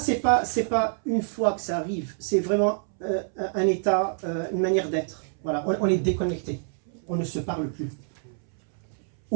pas une fois que ça arrive, c'est vraiment un état, une manière d'être. Voilà, on est déconnecté, on ne se parle plus.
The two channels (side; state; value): left; silent; 61 dB below the other